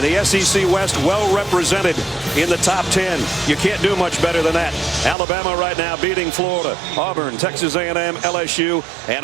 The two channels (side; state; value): left; drops out; at 5.2 s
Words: the SEC West well represented in the top 10. You can't do much better than that. Alabama right now beating Florida, Auburn, Texas A&M, LSU, and